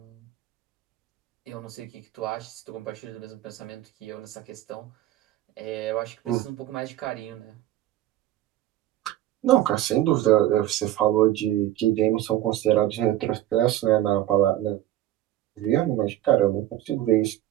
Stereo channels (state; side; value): quieter; left; 13.8 dB